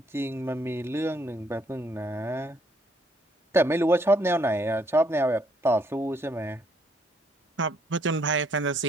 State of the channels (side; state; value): both; normal; correlation 0.69